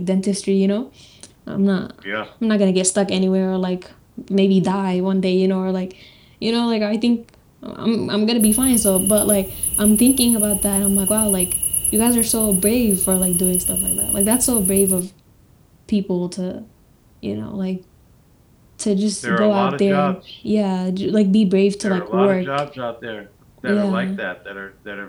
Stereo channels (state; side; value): identical; both; correlation 1.00